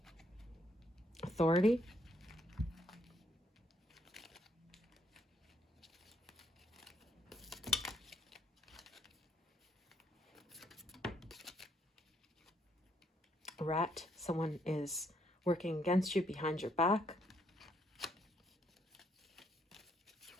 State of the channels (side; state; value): both; normal; correlation 0.72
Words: Authority, Rat. Someone is working against you behind your back.